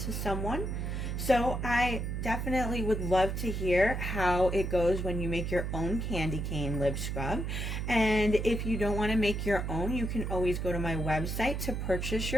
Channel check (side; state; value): right; noise; hum, 3 dB below the sound